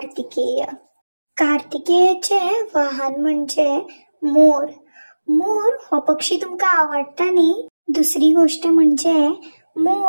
कार्तिकेयचे वाहन म्हणजे मोर। मोर हो पक्षी तुमका आवडटा न्ही? दुसरी गोष्ट म्हणजे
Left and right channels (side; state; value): both; inverted; correlation -1.00